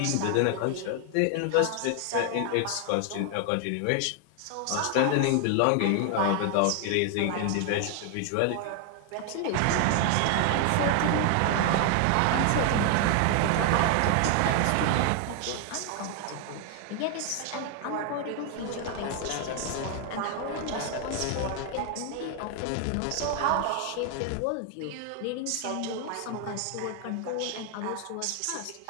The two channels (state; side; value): different; both; correlation 0.00